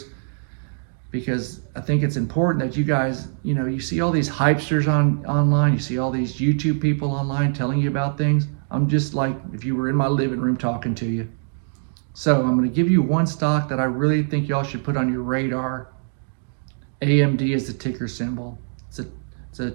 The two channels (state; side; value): silent; left; digital silence